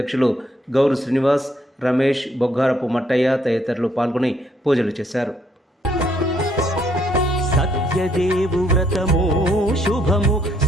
గౌరు శ్రీనివాస్, రమేష్, బొగ్గారపు మట్టయ్య తదితరులు పాల్గొని పూజలు చేశారు. సత్యదేవు వ్రతము శుభము,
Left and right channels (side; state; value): both; normal; correlation 0.69